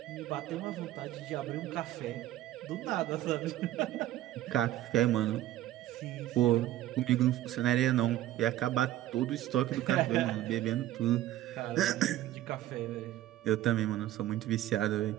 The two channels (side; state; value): left; quieter; 14.0 dB